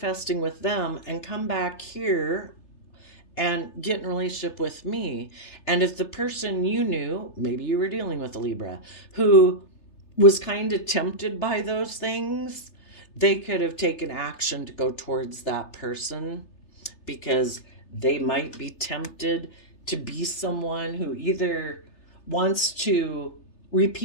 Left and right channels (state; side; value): late; right; 3.3 ms